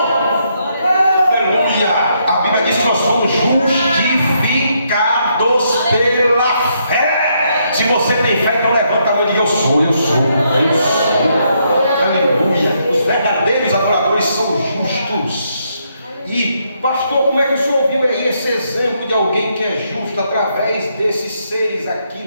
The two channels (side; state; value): both; inverted; correlation -0.75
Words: Aleluia. A Bíblia diz que nós somos justificados pela fé. Se você tem fé, então levanta a mão e diz: eu sou. Aleluia. Os verdadeiros adoradores são justos. E, pastor, como é que o senhor viu aí esse exemplo de alguém que é justo através desses seres aqui